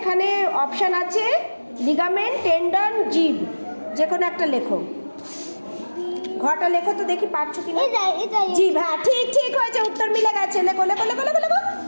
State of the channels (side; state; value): both; inverted; correlation -1.00